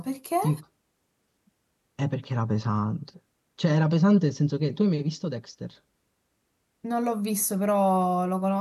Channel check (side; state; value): both; identical; correlation 1.00